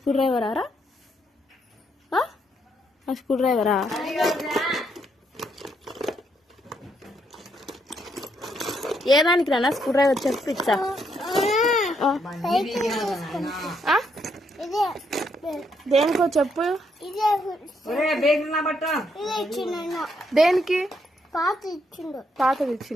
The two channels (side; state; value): both; normal; correlation 0.75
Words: డ్రైవరా? ఆ స్క్రూ డ్రైవరా? ఏ దానికి రానా స్క్రూ డ్రైవర్ చెప్పు ఇచ్చా. దేనికో చెప్పు. దేనికి? పాతది